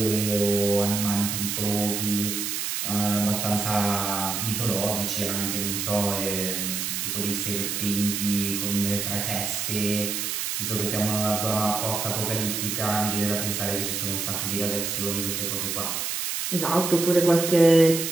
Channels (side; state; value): right; noise; hiss, 2 dB below the sound